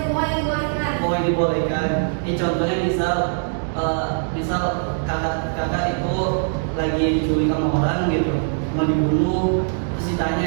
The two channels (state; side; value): silent; left; digital silence